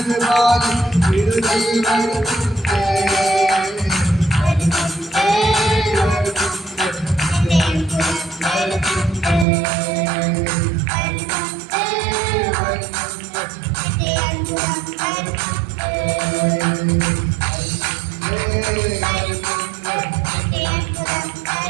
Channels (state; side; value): drops out; left; at 9.5 s